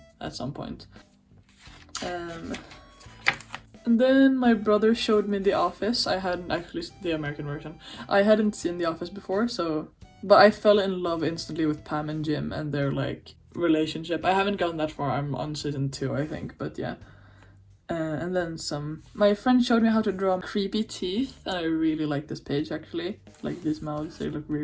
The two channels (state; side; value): identical; both; correlation 1.00